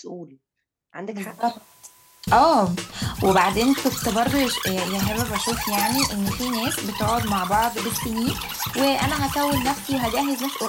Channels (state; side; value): identical; both; correlation 1.00